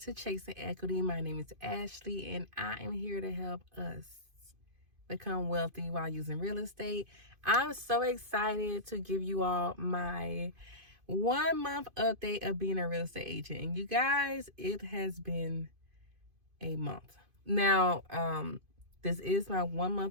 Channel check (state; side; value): late; left; 2.5 ms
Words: Chasing Equity. My name is Ashley, and I am here to help us become wealthy while using real estate. I'm so excited to give you all my 1 month update of being a real estate agent. And you guys, it has been a month. Now, this is my 1